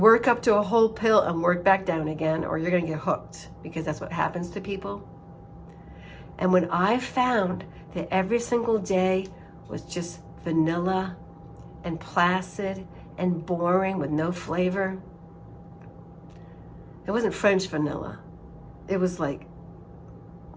up to a whole pill and work back down again, or you're gonna get hooked, because that's what happens to people. And when I found that every single day was just vanilla and placid and boring with no flavor, it wasn't French vanilla. It was like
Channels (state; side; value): identical; both; correlation 1.00